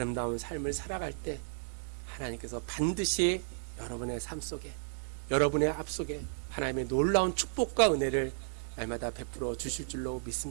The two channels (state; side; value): silent; left; 55 dB below the other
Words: 삶을 살아갈 때 하나님께서 반드시 여러분의 삶 속에, 여러분의 앞 속에 하나님의 놀라운 축복과 은혜를 날마다 베풀어 주실 줄로